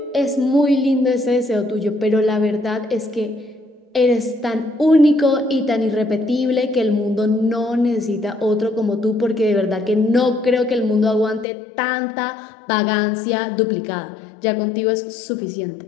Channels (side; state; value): right; drops out; at 11.5 s